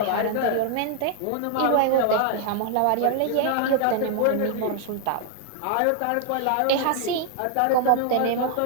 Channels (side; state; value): both; different; correlation 0.00